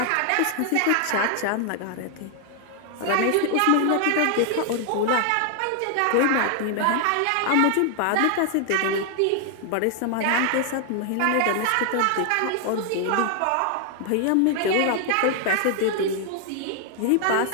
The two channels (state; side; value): different; both; correlation 0.00